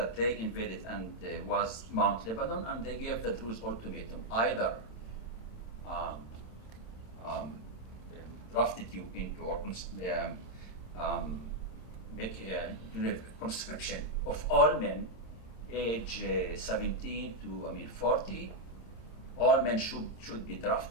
they invaded was Mount Lebanon, and they gave the Druze ultimatum, either drafted you into or make a conscription of all men age 17 to 40. All men should be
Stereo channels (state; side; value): late; right; 27 ms